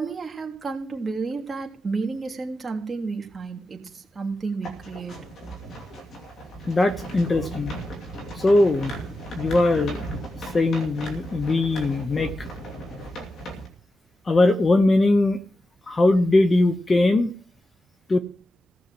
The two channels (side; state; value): both; normal; correlation 0.91